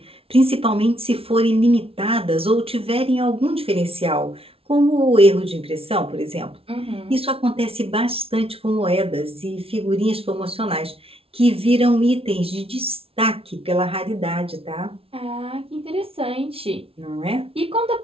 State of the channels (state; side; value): late; left; 0.27 ms